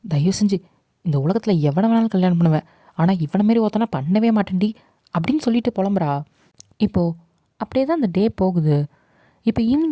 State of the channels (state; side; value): identical; both; correlation 1.00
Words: தயவு செஞ்சு இந்த உலகத்தில் எவனை வேணாலும் கல்யாணம் பண்ணுவேன், ஆனால் இவனை மாரி ஒருத்தனா பண்ணவே மாட்டேன்டி அப்படின்னு சொல்லிட்டு புலம்புறா. இப்போது அப்படியே தான் அந்த டே போகுது. இப்போ